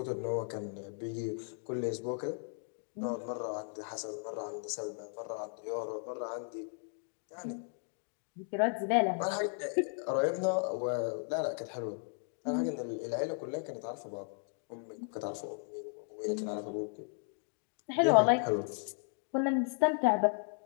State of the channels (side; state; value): right; silent; 54 dB below the other